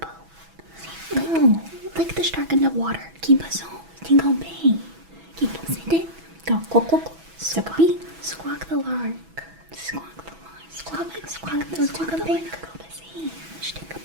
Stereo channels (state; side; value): late; left; 6.1 ms